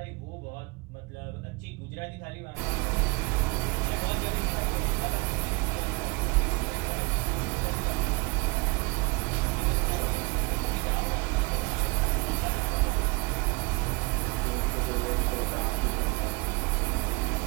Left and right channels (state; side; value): quieter; left; 27.2 dB